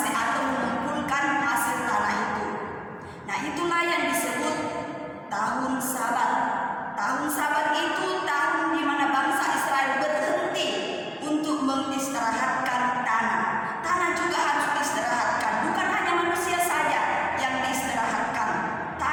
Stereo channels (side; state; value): both; identical; correlation 1.00